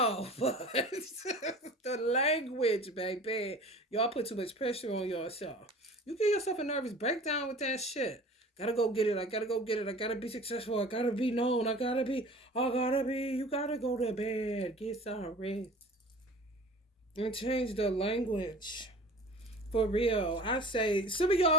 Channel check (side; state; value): both; normal; correlation 0.42